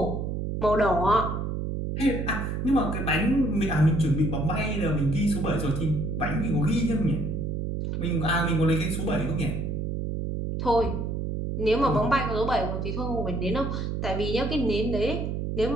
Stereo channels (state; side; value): noise; right; hum, 2 dB below the sound